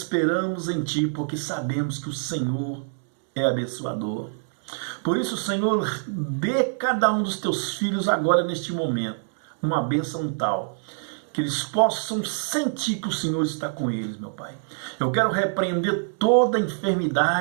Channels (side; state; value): left; silent; digital silence